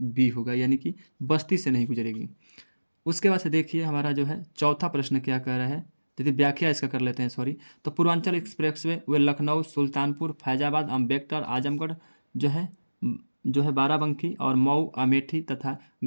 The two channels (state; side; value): inverted; both; correlation -1.00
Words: बी होगा, यानी कि बस्ती से नहीं गुजरेगी। उसके बाद से देखिए हमारा जो है चौथा प्रश्न क्या कह रहा है, यदि व्याख्या इसका कर लेते हैं, सॉरी। तो पूर्वांचल एक्सप्रेसवे वे लखनऊ, सुल्तानपुर, फैजाबाद, अम्बेडकर, आजमगढ़ जो है बाराबंकी, और मऊ, अमेठी तथा